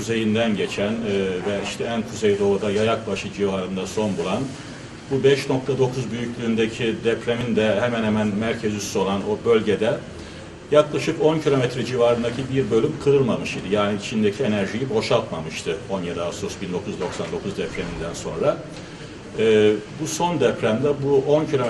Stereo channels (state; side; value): identical; both; correlation 1.00